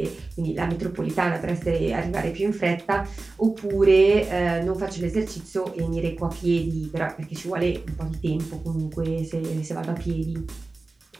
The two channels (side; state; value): left; quieter; 3.4 dB